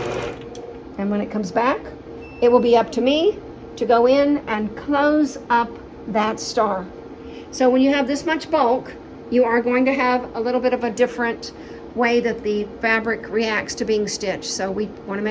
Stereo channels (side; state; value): both; identical; correlation 1.00